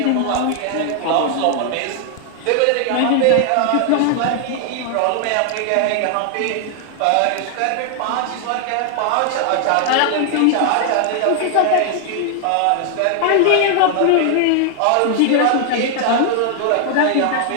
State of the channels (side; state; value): both; different; correlation 0.00